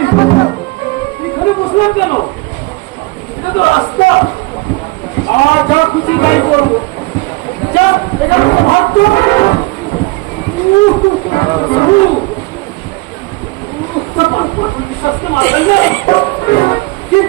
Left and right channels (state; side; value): quieter; left; 23.8 dB